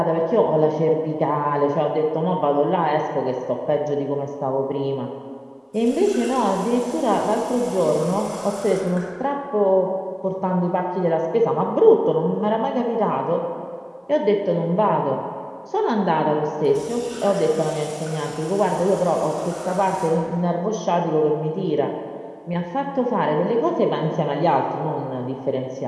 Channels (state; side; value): identical; both; correlation 1.00